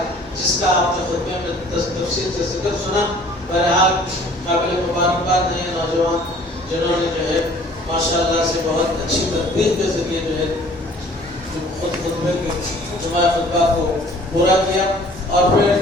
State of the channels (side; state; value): both; normal; correlation 0.53